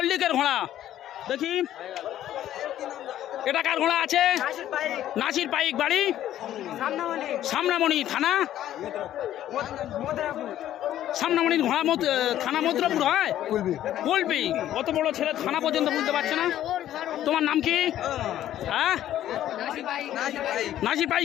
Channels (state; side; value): quieter; right; 12.3 dB